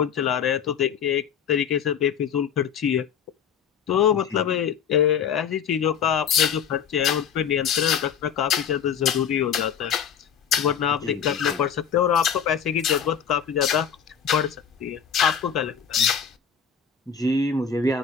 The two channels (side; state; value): right; quieter; 7.7 dB